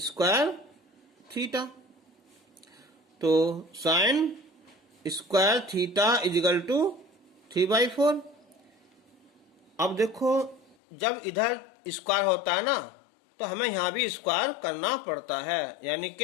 theta, तो sine square theta equal to 3/4। अब देखो जब इधर स्क्वायर होता है ना, तो हमें यहां भी स्क्वायर करना पड़ता है, यानी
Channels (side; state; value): right; drops out; at 10.8 s